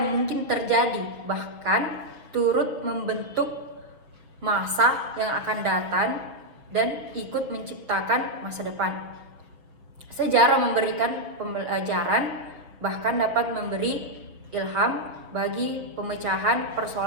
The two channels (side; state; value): left; late; 6.4 ms